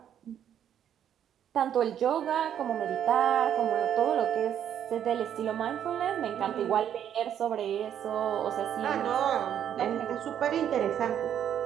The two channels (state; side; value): quieter; left; 9.7 dB